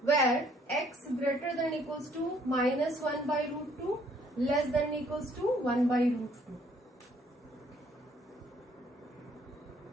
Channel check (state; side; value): normal; both; correlation 0.64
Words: where x greater than or equals to minus 1 by root 2 less than or equals to 1 by root 2.